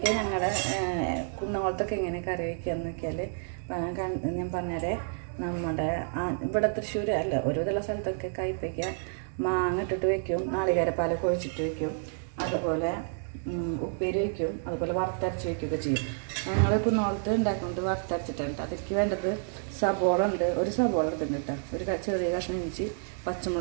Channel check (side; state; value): left; silent; digital silence